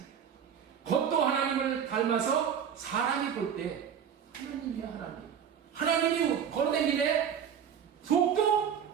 겉도 하나님을 닮아서 사람이 볼 때 하나님이야, 하나님. 하나님이 걸어다니네. 속도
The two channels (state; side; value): quieter; left; 8.2 dB